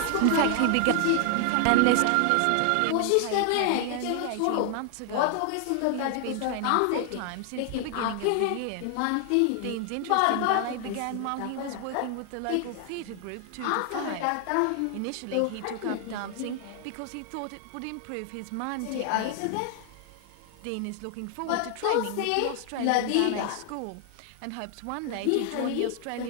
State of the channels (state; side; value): different; both; correlation 0.00